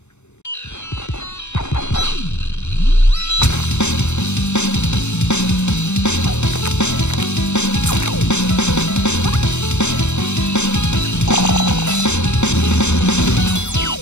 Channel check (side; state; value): right; late; 0.82 ms